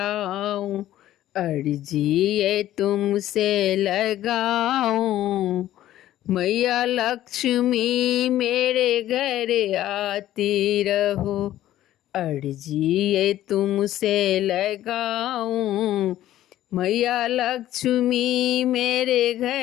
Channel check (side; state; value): right; quieter; 13.4 dB